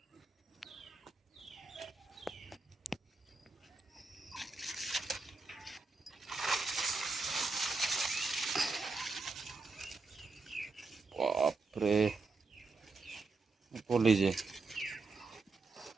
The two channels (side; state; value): left; quieter; 3.9 dB